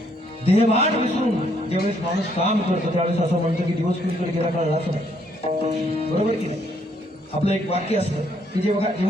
देहभान विसरून ज्यावेळेस माणूस काम करतो त्यावेळेस असं म्हणतो की दिवस कुणीकडे गेला कळलाच नाही. बरोबर की नाही? आपलं एक वाक्य असतं की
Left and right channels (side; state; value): both; normal; correlation 0.69